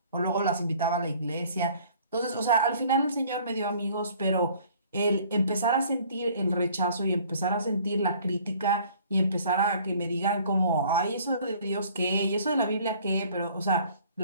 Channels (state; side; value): inverted; both; correlation -0.54